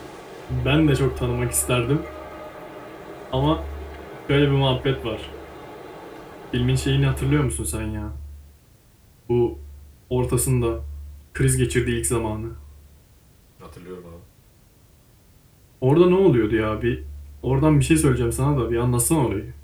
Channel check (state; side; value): identical; both; correlation 1.00